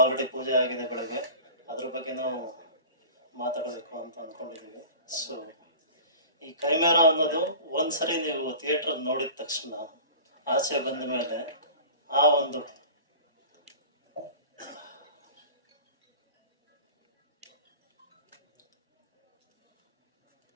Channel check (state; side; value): inverted; both; correlation -0.39